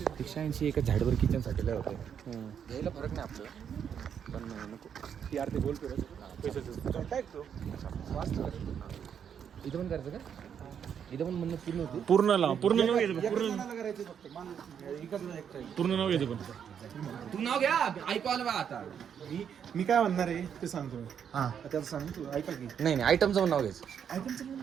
180 एका झाडवर किचन साठी लय होते, यायला फरक नाही आपल्याला, पण नको यार ते बोलतो रे. इथं पण करायचं का? इथं पण म्हणणं पूर्ण होती. पूर्ण लाव, पूर्ण नाव घ्यायचं करायचं फक्त. पूर्ण नाव घ्यायचं पण तू नाव घ्या, ऐकू आलं बा आता. मी काय म्हणणार आहे ते सांगतो मी. हा त्याचं सांग तू, ऐका की. नाही आयटमचं पण नाव घ्यायचं. आयटमचं पण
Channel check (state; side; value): quieter; left; 8.1 dB